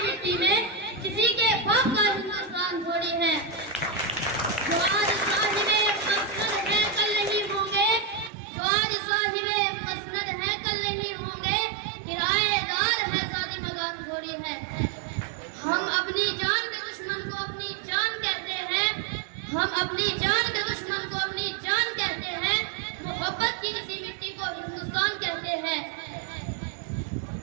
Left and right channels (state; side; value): drops out; left; at 8.3 s